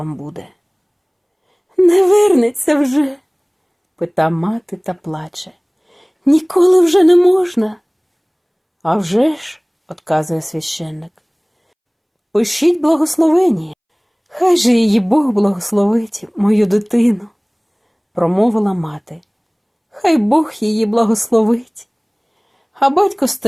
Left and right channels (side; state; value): both; identical; correlation 1.00